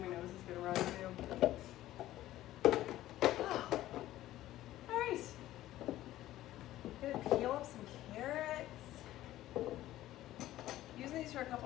nose is gonna run too. Oh. All right, gonna peel up some carrots. Using these for a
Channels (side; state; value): right; quieter; 14.6 dB